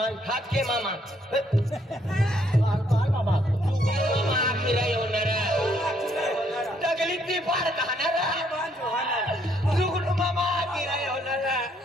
हात के मामा बाल मामा मामा फिरा येणार दगलीत ती पार खाणार जुगुड मामा फिरा येणार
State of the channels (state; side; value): normal; both; correlation 0.69